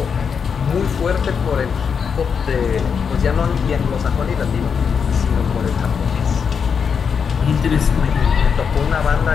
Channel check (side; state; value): right; quieter; 6.4 dB